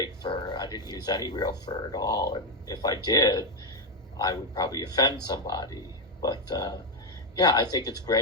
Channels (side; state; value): both; normal; correlation 0.06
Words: fur. I didn't use any real fur at all. And if I did, I would probably offend somebody. But I think it's